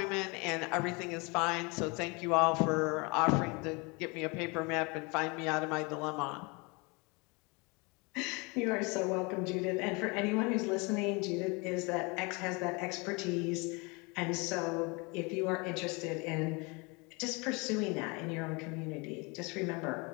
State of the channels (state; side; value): quieter; right; 28.7 dB